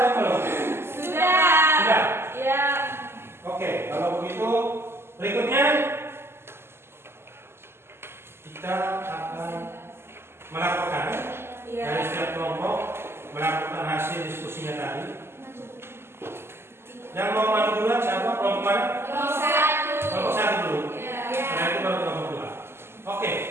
belum? Sudah. Sudah? Ya. Oke, kalau begitu berikutnya kita akan melaporkan dari setiap kelompok melakukan hasil diskusinya tadi. Yang mau maju duluan siapa? Kelompok mana? Kelompok 1. Kelompok 1 dulu. Ya. Setelah itu baru kelompok 2. Oke,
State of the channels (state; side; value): late; left; 0.12 ms